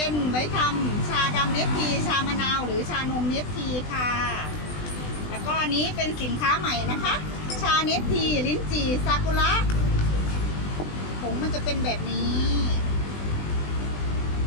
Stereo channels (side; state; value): right; late; 20 ms